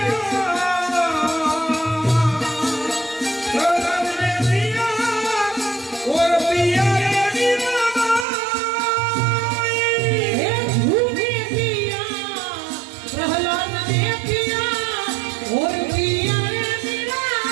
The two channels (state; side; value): drops out; left; at 8.2 s